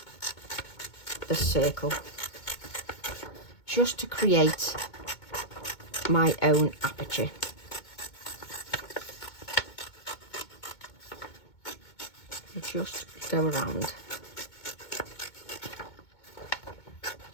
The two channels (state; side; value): late; right; 2.2 ms